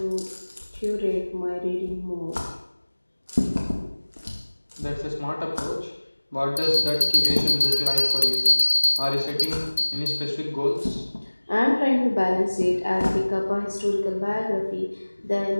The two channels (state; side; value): inverted; both; correlation -1.00